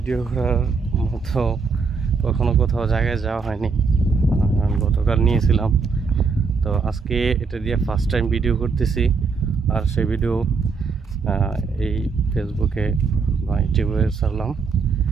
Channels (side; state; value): left; quieter; 4.9 dB